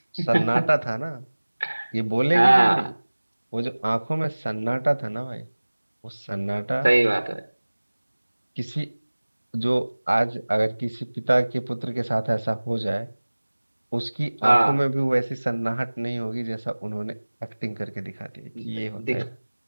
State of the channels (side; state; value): both; inverted; correlation -1.00